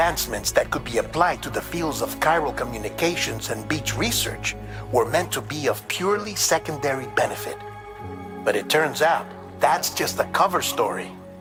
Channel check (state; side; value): identical; both; correlation 1.00